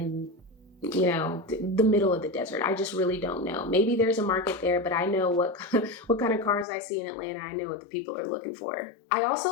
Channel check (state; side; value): drops out; right; at 6.7 s